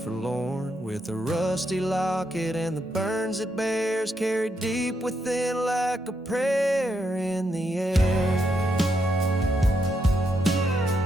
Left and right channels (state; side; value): normal; both; correlation 0.80